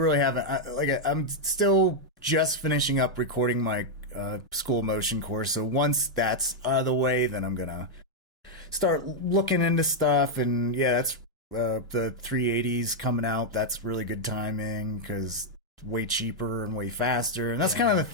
haven't. I'm still just finishing up recording my school motion course, so once that's out of the way, then I'm going to start looking into stuff, and that's... the 380s coming out. That's really good timing because it's way cheaper and way faster. And that's kind of the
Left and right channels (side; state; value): both; normal; correlation -0.02